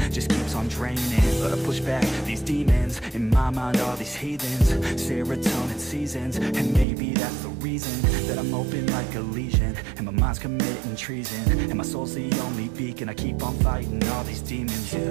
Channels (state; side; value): drops out; left; at 6.9 s